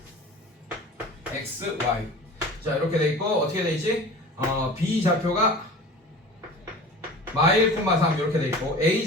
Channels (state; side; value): normal; both; correlation 0.39